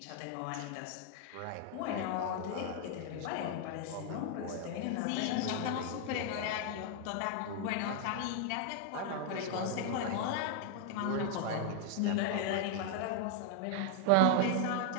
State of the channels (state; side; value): different; both; correlation 0.00